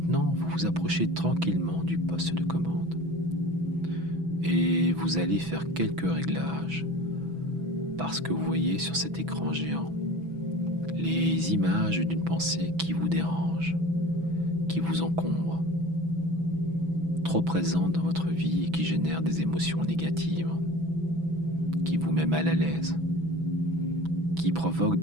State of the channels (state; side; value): late; left; 6.1 ms